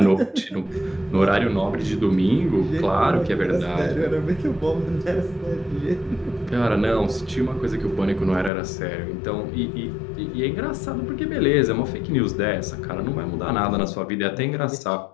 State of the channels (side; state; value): right; drops out; at 8.5 s